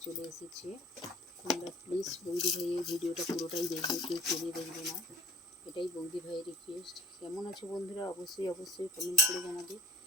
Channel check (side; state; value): both; normal; correlation 0.47